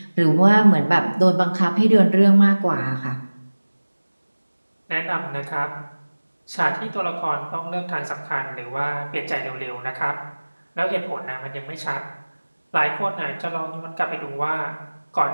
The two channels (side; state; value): both; inverted; correlation -1.00